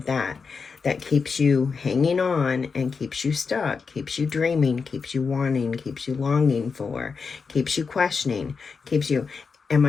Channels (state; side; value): quieter; right; 5.2 dB